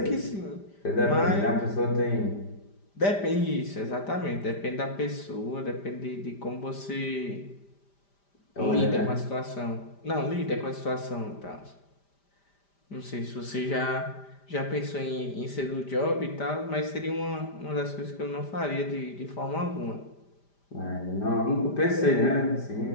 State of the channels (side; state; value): right; late; 5.0 ms